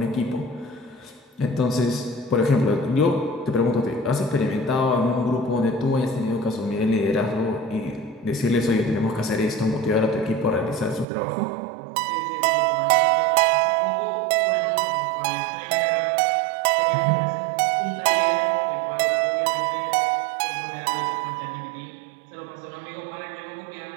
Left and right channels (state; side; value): drops out; left; at 11.1 s